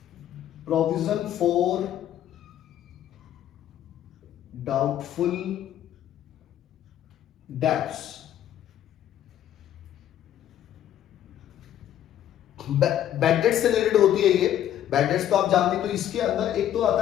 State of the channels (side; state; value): right; quieter; 11.3 dB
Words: Provision for doubtful debts. Bad dates से रिलेटेड होती है ये। बैड डेट्स तो आप जानते हैं। तो इसके अंदर एक तो